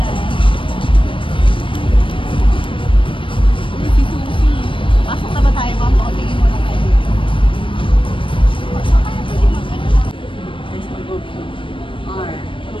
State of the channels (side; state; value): right; late; 0.25 ms